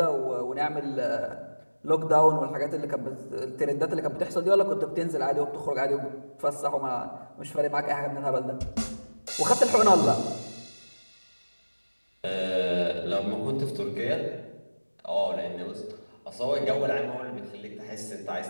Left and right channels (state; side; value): inverted; both; correlation -1.00